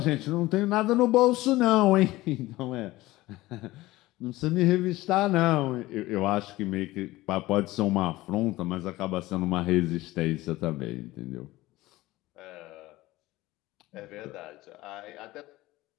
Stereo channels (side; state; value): right; quieter; 18.3 dB